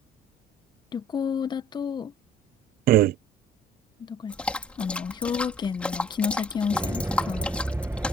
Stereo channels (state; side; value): normal; both; correlation 0.52